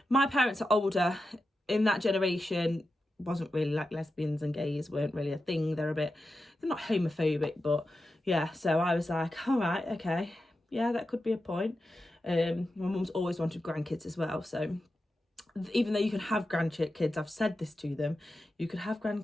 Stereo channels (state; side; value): normal; both; correlation 0.90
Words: my parents are older. In that generation, wasn't really like lesbians and gays weren't really a thing. They're not homophobic, but yeah. So I was like, all right, okay, yeah, that could be a point. My mum's always wanted grandkids as well. So even though you can have grandkids, I've said this to them, you could have